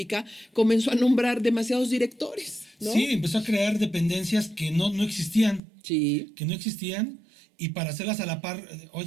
comenzó a nombrar demasiados directores, ¿no? Sí, empezó a crear dependencias que no existían. Sí. Que no existían. Y para hacerlas a la par,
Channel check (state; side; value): drops out; left; at 5.6 s